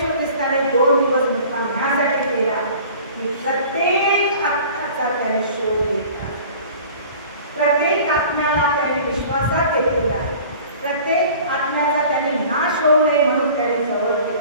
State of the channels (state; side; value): inverted; both; correlation -0.45